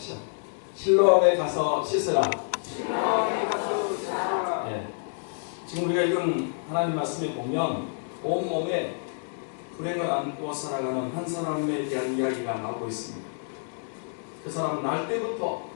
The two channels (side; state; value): right; silent; digital silence